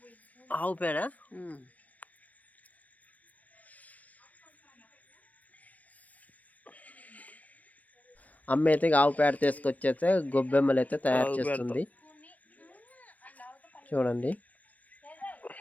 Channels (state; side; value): late; right; 0.072 ms